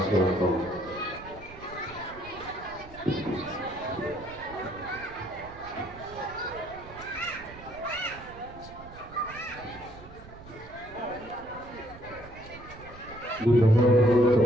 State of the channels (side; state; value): right; noise; rumble, 17 dB below the sound